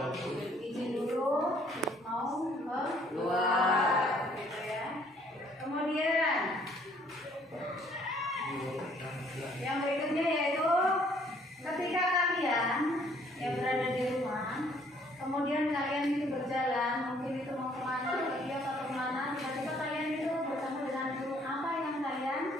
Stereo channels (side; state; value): both; normal; correlation 0.62